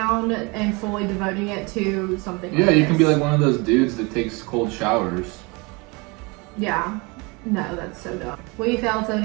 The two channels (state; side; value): quieter; left; 27.7 dB